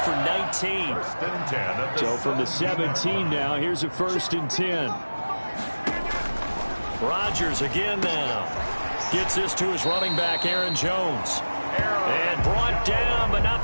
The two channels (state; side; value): inverted; both; correlation -1.00